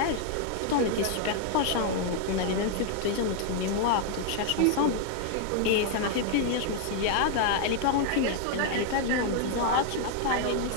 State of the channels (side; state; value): both; different; correlation 0.00